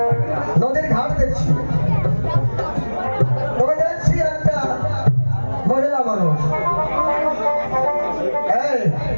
নদীর ঘাট দেখছি তবে দেখছি একটা মহিলা মানুষ এই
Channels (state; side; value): inverted; both; correlation -1.00